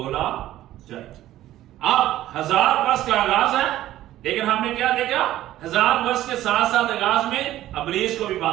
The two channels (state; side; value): quieter; left; 14.0 dB